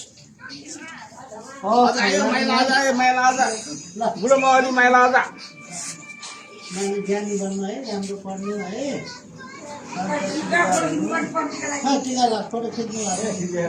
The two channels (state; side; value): identical; both; correlation 1.00